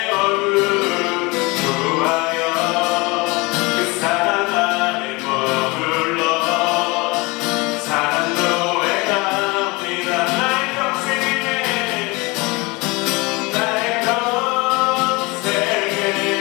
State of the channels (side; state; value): right; quieter; 25.1 dB